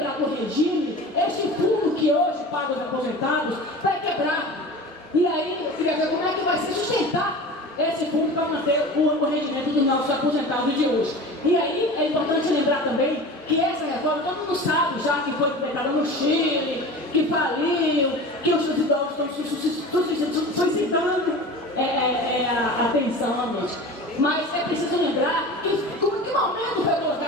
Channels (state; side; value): normal; both; correlation 0.35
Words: do regime, esse fundo que hoje paga os aposentados vai quebrar. E aí, eu queria ver como é que vai se sustentar esse fundo para manter o rendimento dos nossos aposentados de hoje. E aí, é importante lembrar também que essa reforma, todo mundo sabe já que foi implementada no Chile, que faliu, que os idosos estão suscitando a atenção à noite. Mas é preciso lembrar que em que momento foi